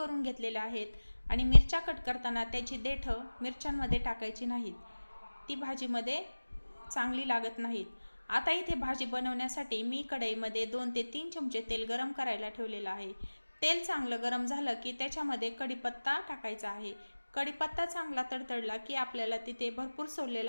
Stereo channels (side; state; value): both; inverted; correlation -1.00